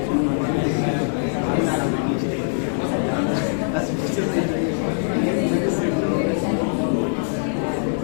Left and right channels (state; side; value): silent; right; digital silence